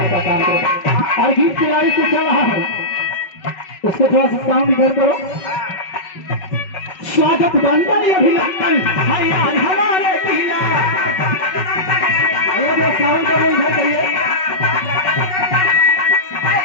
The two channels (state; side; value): late; right; 5.3 ms